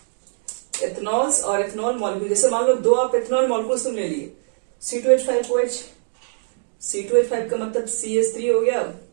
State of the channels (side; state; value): left; silent; digital silence